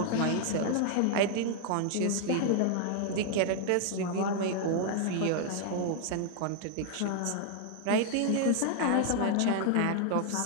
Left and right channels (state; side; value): different; both; correlation 0.00